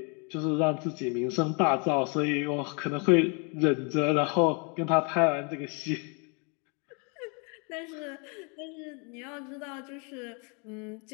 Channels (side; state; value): right; quieter; 34.6 dB